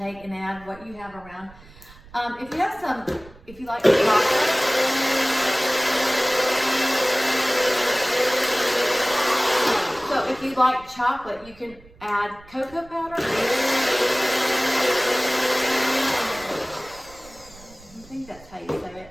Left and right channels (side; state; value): right; noise; rumble, 23 dB below the sound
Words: and add what you have around. If you have some, if you like chocolate, so if you like chocolate, you can add cocoa powder. I think that's how you say it.